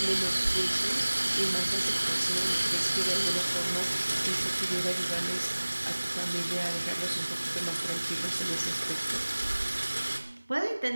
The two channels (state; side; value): inverted; both; correlation -1.00